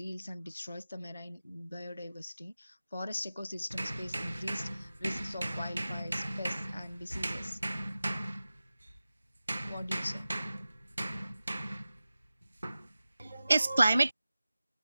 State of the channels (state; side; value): inverted; both; correlation -0.95